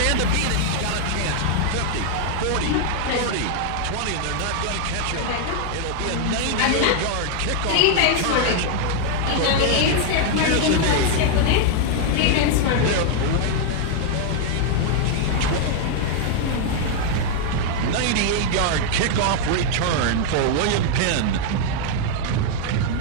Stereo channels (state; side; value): different; both; correlation 0.00